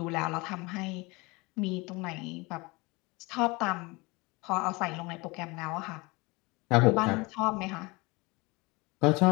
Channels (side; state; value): right; quieter; 25.0 dB